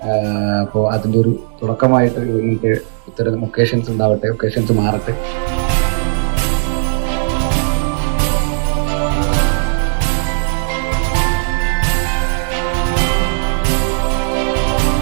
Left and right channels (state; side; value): silent; left; digital silence